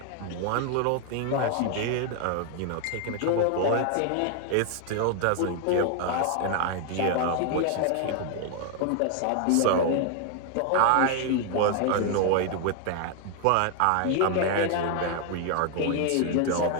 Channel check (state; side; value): different; both; correlation 0.00